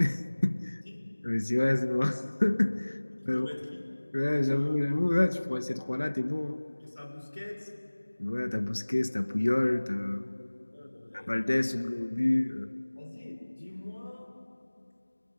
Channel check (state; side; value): inverted; both; correlation -1.00